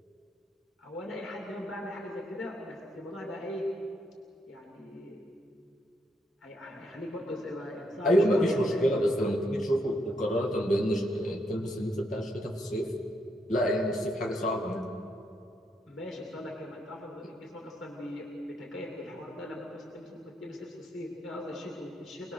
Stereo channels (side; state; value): both; normal; correlation 0.77